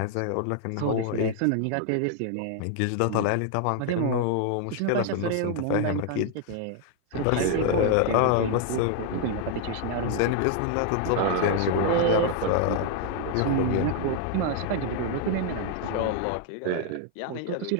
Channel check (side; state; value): both; different; correlation 0.00